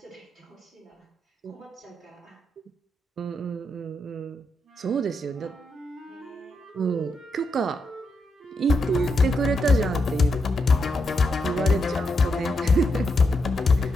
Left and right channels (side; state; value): both; normal; correlation 0.83